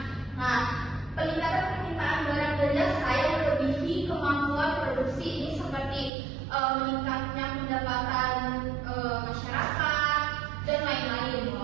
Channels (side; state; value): left; drops out; at 6.1 s